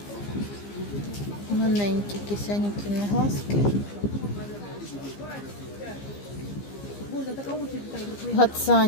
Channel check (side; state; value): right; late; 15 ms